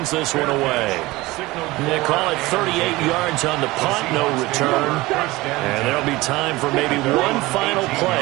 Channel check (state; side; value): quieter; left; 20.1 dB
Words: this one away. They call it 38 yards on the punt, no return. And there'll be time for maybe one final